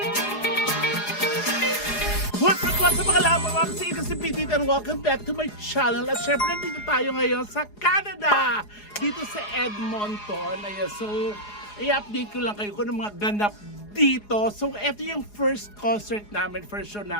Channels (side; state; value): right; late; 4.8 ms